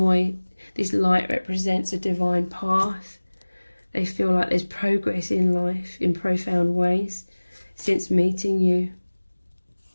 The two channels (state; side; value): inverted; both; correlation -1.00